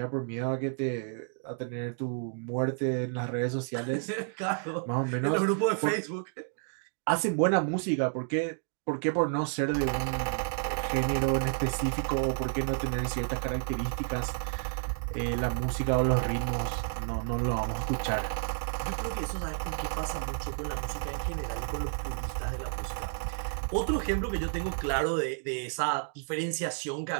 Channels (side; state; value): left; silent; digital silence